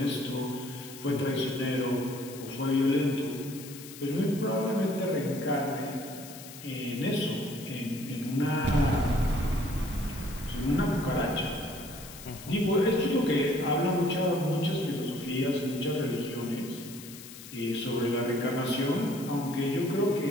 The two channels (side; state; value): left; noise; hiss, 15 dB below the sound